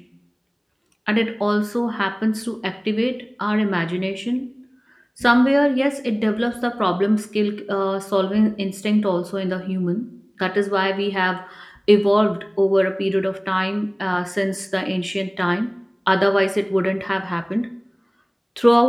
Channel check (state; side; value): identical; both; correlation 1.00